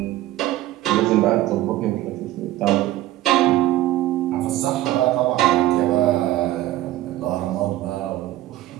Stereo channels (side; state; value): left; quieter; 15.3 dB